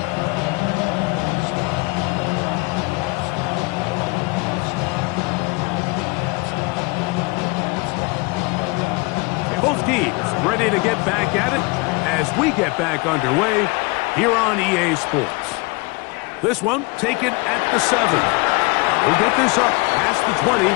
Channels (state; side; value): quieter; right; 27.6 dB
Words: Both teams ready to get back at it as we get back underway here on EA Sports. This one taken at the 7. We'll get this up past the 20.